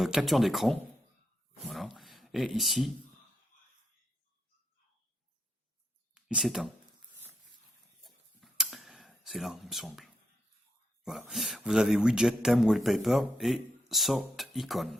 capture d'écran. Voilà. Et ici, il s'éteint. C'est là, il me semble. Voilà. Vous avez widget, thème, wallpaper et sort icon.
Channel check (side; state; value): both; normal; correlation 0.80